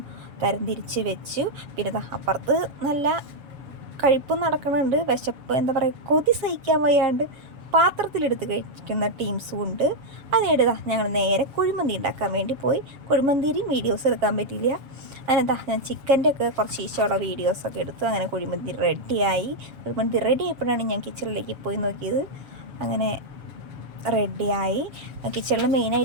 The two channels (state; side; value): late; left; 7.3 ms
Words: തരംതിരിച്ച് വെച്ചു. പിന്നെ അപ്പുറത്ത് നല്ല കഴിപ്പ് നടക്കുന്നുണ്ട്. വിശപ്പ് എന്താ പറയുക, കൊതി സഹിക്കാൻ വയ്യാണ്ട് പാത്രത്തിലെടുത്ത് കഴിക്കുന്ന ടീംസും ഉണ്ട്. അതിനിടെ ഞങ്ങൾ നേരെ കുഴിമന്തി ഉണ്ടാക്കാൻ വേണ്ടി പോയി. കുഴിമന്തിയും വീഡിയോസ് എടുക്കാൻ പറ്റിയില്ല. അങ്ങനെ ഞാൻ ചിക്കൻ്റെ ഒക്കെ കുറച്ച് ഈശോയുള്ള വീഡിയോസൊക്കെ എടുത്തു. അങ്ങനെ കുഴിമന്തി റെഡിയായി. കുഴിമന്തി റെഡി ആയപ്പോഴാണ് ഞാൻ കിച്ചണിലേക്ക് പോയി നോക്കിയത്. അങ്ങനെ റെഡിയായി. കിച്ചണിൽ